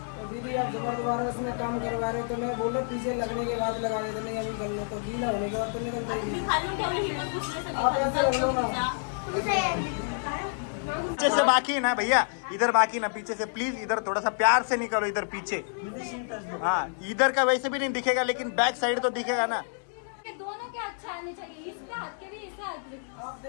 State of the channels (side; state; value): right; silent; digital silence